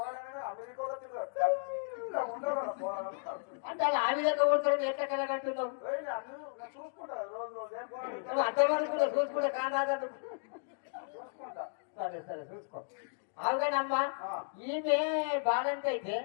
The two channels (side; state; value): right; silent; digital silence